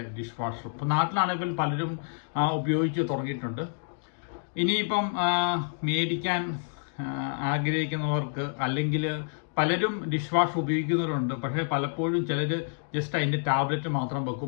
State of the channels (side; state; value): right; silent; digital silence